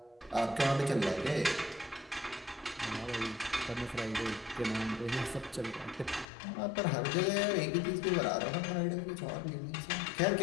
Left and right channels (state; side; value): drops out; right; at 6.2 s